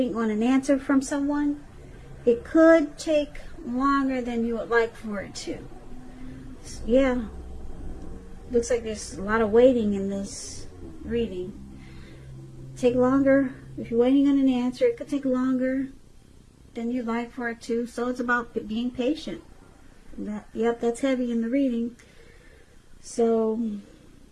on an answer from someone, it could take longer than you would like for it to. Yeah. Looks like there's a lot of waiting in this reading. Take longer. If you're waiting on an answer, it could take longer than you'd like for it to. So it's about being patient. Yep, that's heavy in the reading. So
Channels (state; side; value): identical; both; correlation 1.00